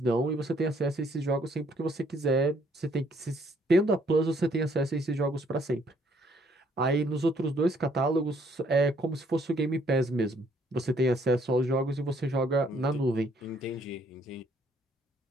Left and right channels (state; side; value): normal; both; correlation 0.66